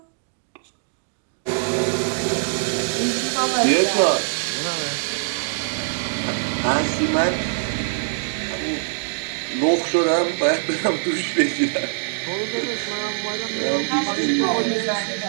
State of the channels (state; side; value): silent; left; digital silence